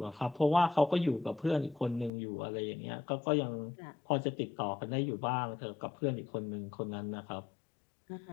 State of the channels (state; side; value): drops out; right; at 2.1 s